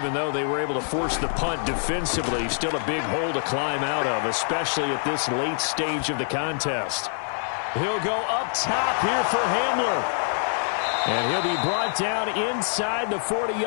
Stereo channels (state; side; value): silent; right; 62 dB below the other